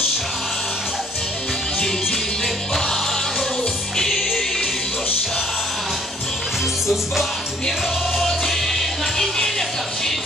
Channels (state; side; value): normal; both; correlation 0.61